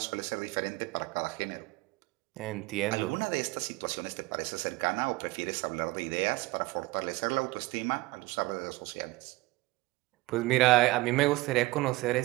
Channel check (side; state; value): left; quieter; 20.7 dB